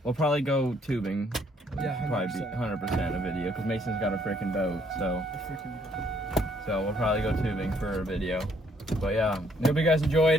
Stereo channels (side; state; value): both; normal; correlation 0.67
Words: We'll probably go tubing. Yeah, Probably be 100% a video because Mason's got a freaking boat. So we'll probably go tubing for a video. But yeah, hope you guys